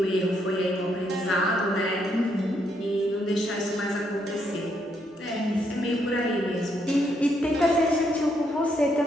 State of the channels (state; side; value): normal; both; correlation 0.75